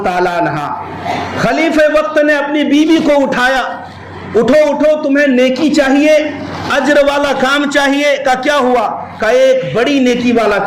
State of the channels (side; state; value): both; identical; correlation 1.00